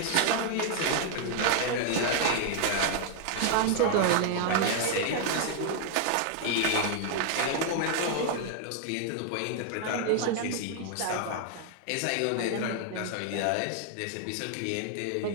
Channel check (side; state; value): both; different; correlation 0.00